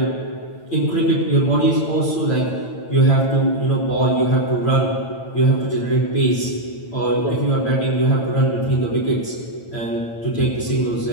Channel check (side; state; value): right; late; 9.0 ms